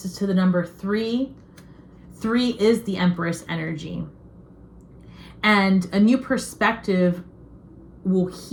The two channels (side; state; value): both; identical; correlation 1.00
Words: to the number 3. 3 is the Empress energy. And a new perspective will